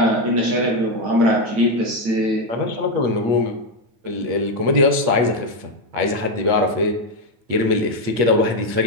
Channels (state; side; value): late; left; 8.5 ms